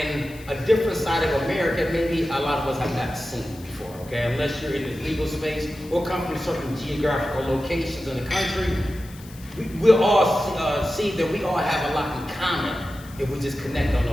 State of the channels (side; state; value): left; noise; hiss, 21 dB below the sound